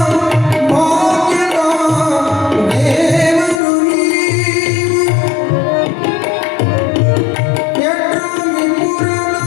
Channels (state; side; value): drops out; right; at 3.6 s